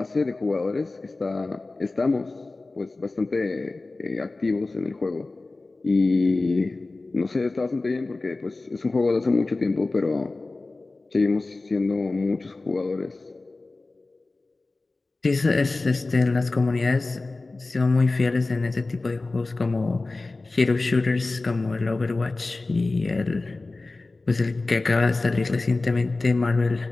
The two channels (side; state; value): right; quieter; 3.3 dB